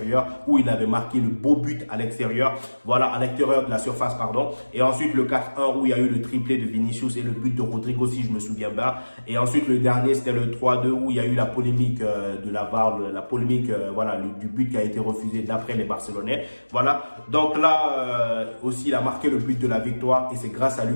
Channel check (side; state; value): both; inverted; correlation -1.00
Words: où il avait marqué le beau but à l'extérieur. Voilà, à l'extérieur de la surface pardon. Et ensuite le 4-1 où il y a eu le triplé de Vinicius et le but de Rodrigo si je me souviens bien. Et ensuite le dernier c'était le 3-2 où il y a eu la polémique de la VAR, la polémique voilà du but qui a été refusé d'après les Barcelonais. Voilà. Donc là aussi il a marqué le but de la victoire et c'est grâce à lui